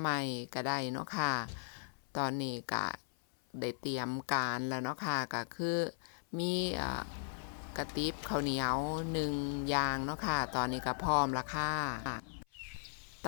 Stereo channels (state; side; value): silent; right; 53 dB below the other